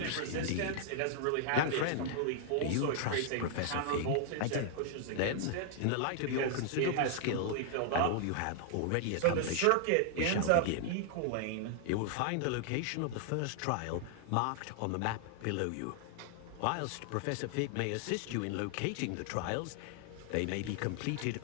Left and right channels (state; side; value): different; both; correlation 0.00